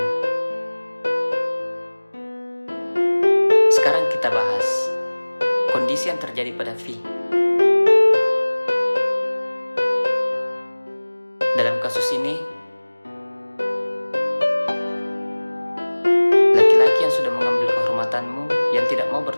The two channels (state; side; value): inverted; both; correlation -1.00